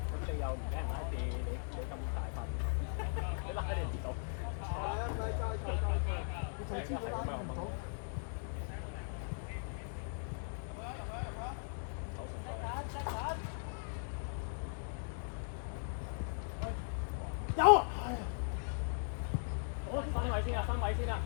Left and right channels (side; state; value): right; silent; digital silence